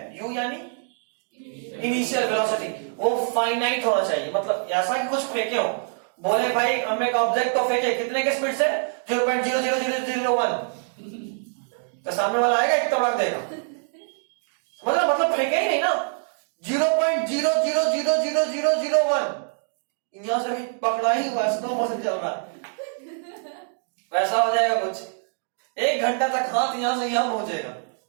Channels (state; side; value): silent; left; 62 dB below the other